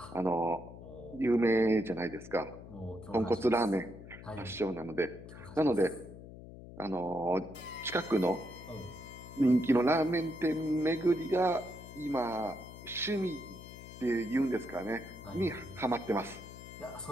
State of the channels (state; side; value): noise; left; hum, 15 dB below the sound